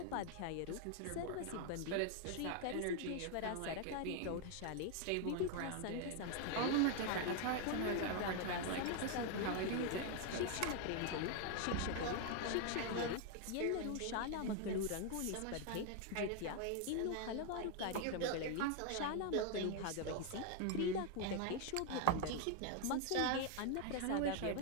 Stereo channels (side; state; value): both; different; correlation 0.01